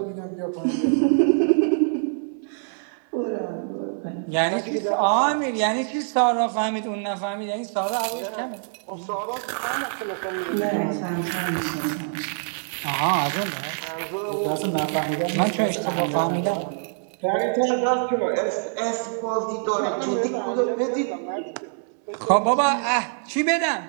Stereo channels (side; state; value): left; silent; 62 dB below the other